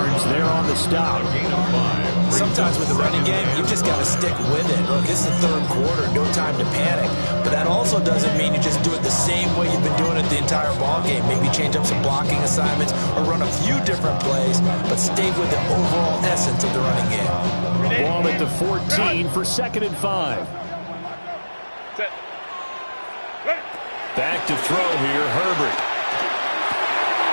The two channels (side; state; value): both; inverted; correlation -1.00